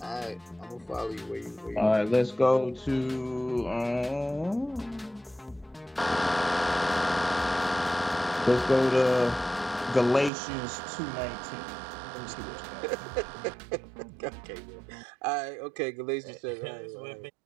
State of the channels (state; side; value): drops out; left; at 10.3 s